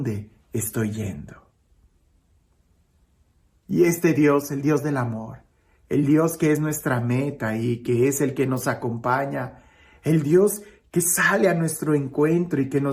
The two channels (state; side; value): identical; both; correlation 1.00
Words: estoy yendo? Y este Dios, el Dios del amor, el Dios que es nuestra meta y que es el que nos acompaña, el Dios que sale a nuestro encuentro y que